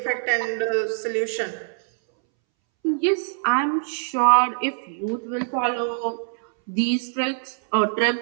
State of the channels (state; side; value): silent; left; 63 dB below the other